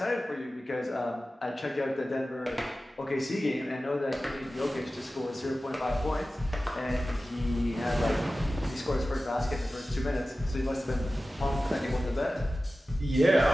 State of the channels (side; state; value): both; normal; correlation 0.95